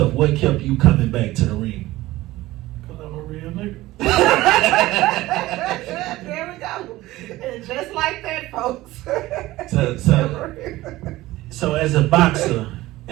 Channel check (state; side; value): quieter; left; 17.5 dB